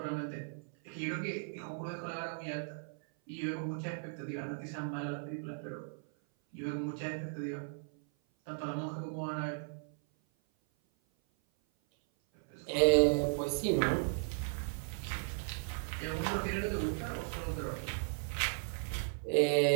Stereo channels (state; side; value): silent; left; 54 dB below the other